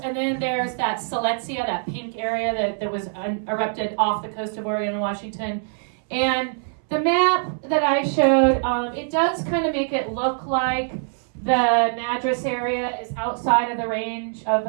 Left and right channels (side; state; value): left; silent; 63 dB below the other